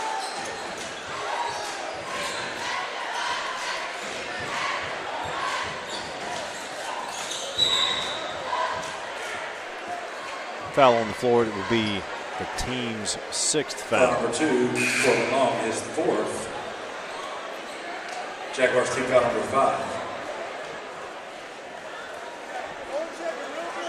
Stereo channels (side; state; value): both; identical; correlation 1.00